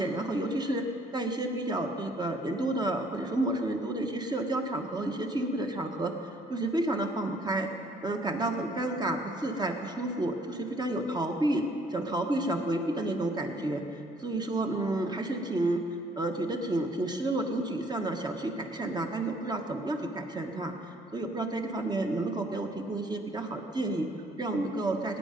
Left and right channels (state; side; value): normal; both; correlation 0.61